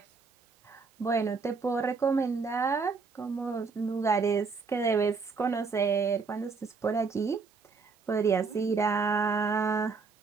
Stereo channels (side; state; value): left; quieter; 4.8 dB